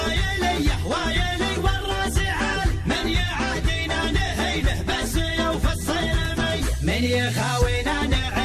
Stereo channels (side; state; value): both; identical; correlation 1.00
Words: وايلي والراس عالي، من يعادينا نهينه بس يوفى الصيرمي، من يخاوينا